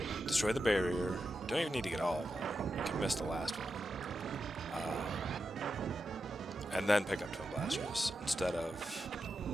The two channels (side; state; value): both; normal; correlation 0.89